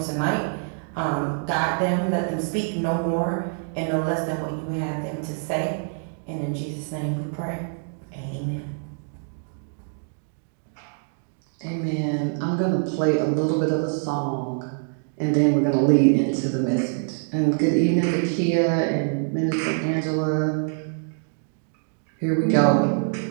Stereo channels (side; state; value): left; silent; 60 dB below the other